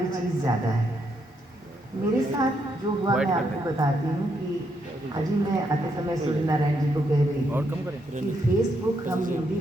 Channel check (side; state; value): both; normal; correlation 0.77